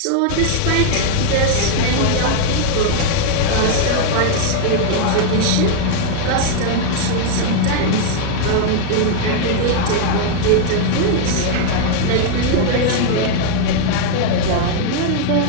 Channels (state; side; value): different; both; correlation 0.00